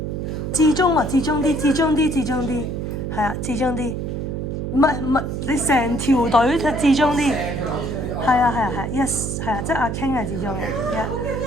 至中啊，至中啲，係啊，至中啲。唔係，你成條隊至中啲。係啊，yes， 係啊，即係阿 King 係至中嘅。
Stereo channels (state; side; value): noise; right; hum, 3 dB below the sound